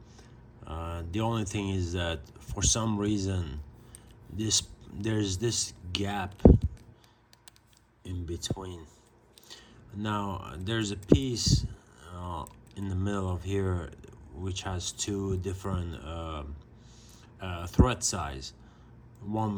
The only thing is that for some reason there's this gap in between. Now there's a piece in the middle of here which has two different thread size.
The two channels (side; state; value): both; identical; correlation 1.00